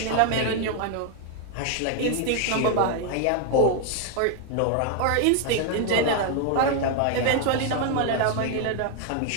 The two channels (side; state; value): both; different; correlation 0.00